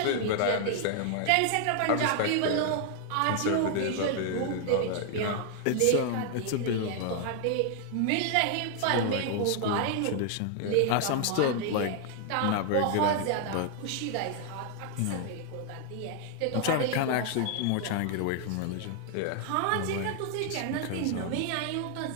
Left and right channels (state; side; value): different; both; correlation 0.00